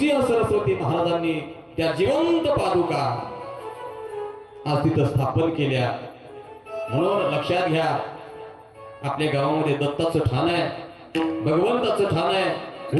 सरस्वती महाराजांनी त्या जिवंत पादुका आज तिथं स्थापन केल्या. म्हणून लक्षात घ्या, आपल्या गावामध्ये दत्ताचं ठाण आहे, भगवंताचं ठाण आहे.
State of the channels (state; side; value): identical; both; correlation 1.00